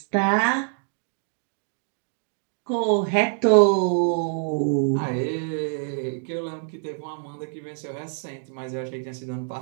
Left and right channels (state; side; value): silent; left; digital silence